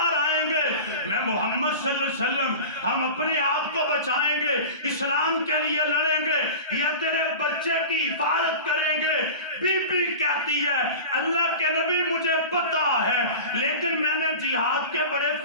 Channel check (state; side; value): inverted; both; correlation -0.33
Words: آئیں گے، میں محمد صلی اللہ علیہ وسلم ہم اپنے آپ کو بچائیں گے، اسلام کے لیے لڑیں گے یا تیرے بچے کی حفاظت کریں گے؟ بی بی کہتی ہے اللہ کے نبی مجھے پتا ہے، لیکن میں نے جہاد کے بڑے